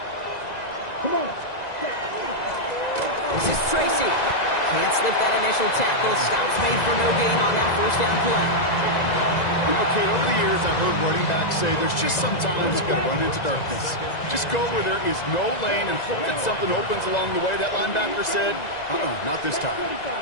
Come on. This is Tracy. Can't slip that initial tackle. Stops made for no gain on that 1st down play. You know, Kate, over the years, I've heard running backs say there's just sometimes you got to run into darkness. Just go where there is no lane and hope that something opens along the way. That linebacker said, not this time.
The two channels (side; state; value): right; late; 1.9 ms